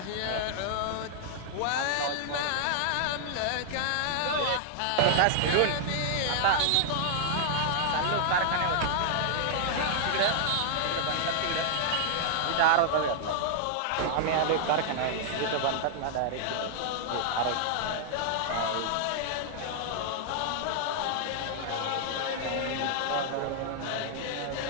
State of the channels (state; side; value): different; both; correlation -0.01